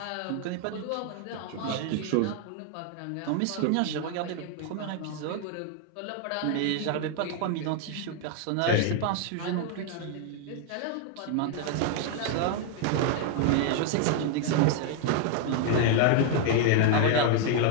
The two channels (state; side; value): different; both; correlation 0.00